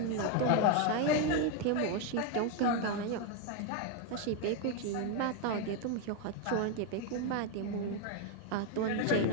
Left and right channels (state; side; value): different; both; correlation 0.01